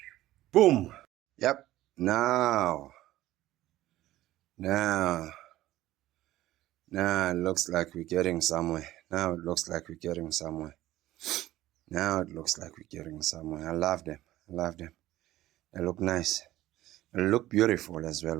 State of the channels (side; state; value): left; quieter; 15.4 dB